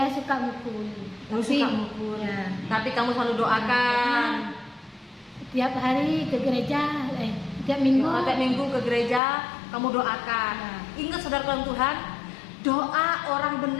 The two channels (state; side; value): drops out; right; at 9.2 s